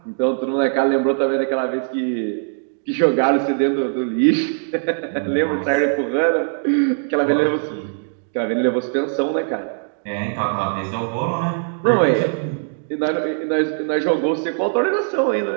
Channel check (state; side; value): silent; left; 65 dB below the other